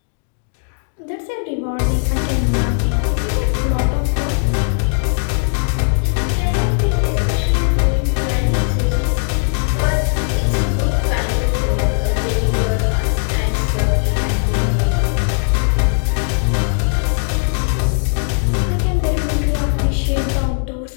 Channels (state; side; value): silent; right; digital silence